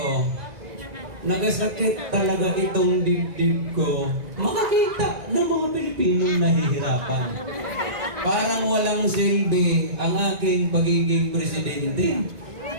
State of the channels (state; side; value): late; left; 2.0 ms